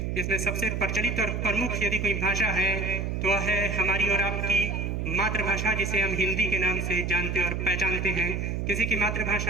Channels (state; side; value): noise; right; hum, 2 dB below the sound